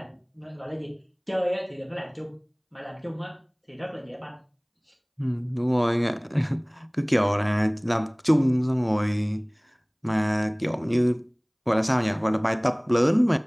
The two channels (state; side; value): identical; both; correlation 1.00